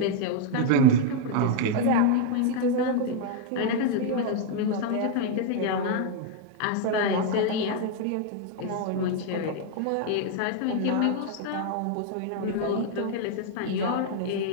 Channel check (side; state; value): both; different; correlation 0.00